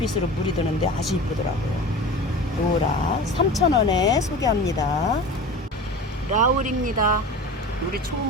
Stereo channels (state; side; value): normal; both; correlation 0.34